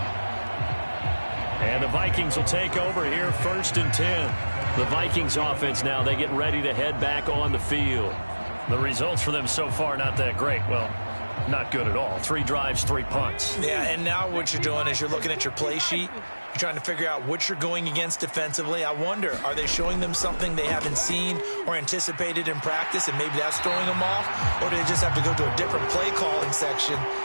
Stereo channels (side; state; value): both; inverted; correlation -1.00